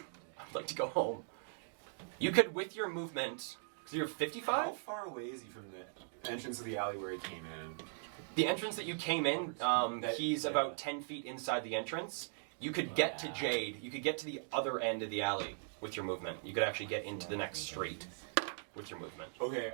like to go home. You could, with your movement, because you're 55? How far away is he from the entrance of the alley where he came in? The entrance that you came in, he's yeah. about 10 feet inside the entrance. You could get to Jade. You could get to the other end of the alley with your movement. You could actually get into the next street with your movement. Okay,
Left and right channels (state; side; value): silent; left; digital silence